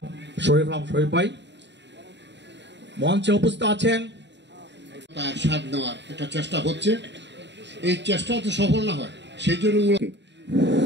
শরীফ ভাই মঞ্চে উপস্থিত আছেন। তার স্বাদ নেওয়ার একটা চেষ্টা হচ্ছে, এই চেষ্টা তো সফল না হয় সেই জন্য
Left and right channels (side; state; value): left; late; 0.52 ms